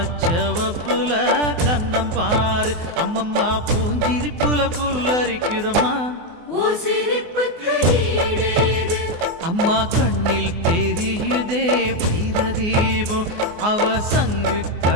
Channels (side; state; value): left; late; 24 ms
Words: கண்ணம் பாரு. அம்மம்மா பூஞ்சிரிப்புல புல்லரிக்குதம்மா, அம்மா கண்ணில் தெரியுதே வீரதீபம், அவ சங்கு